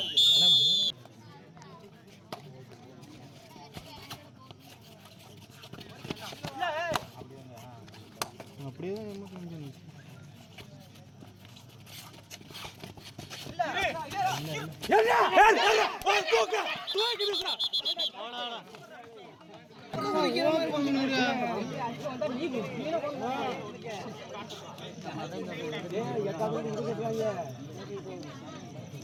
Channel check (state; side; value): identical; both; correlation 1.00